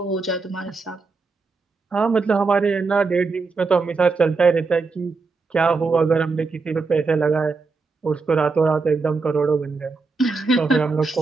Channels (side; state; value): left; quieter; 4.2 dB